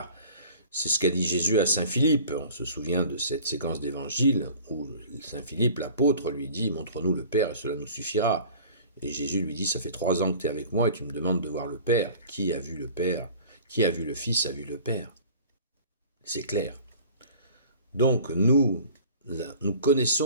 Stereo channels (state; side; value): inverted; both; correlation -0.45